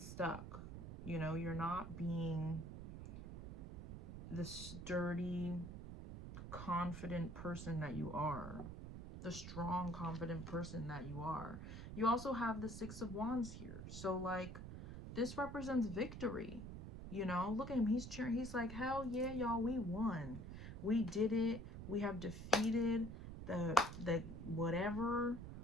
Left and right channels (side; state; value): right; noise; rumble, 9 dB below the sound